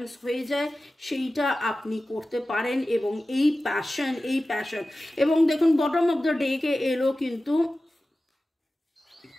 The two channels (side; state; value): both; normal; correlation 0.95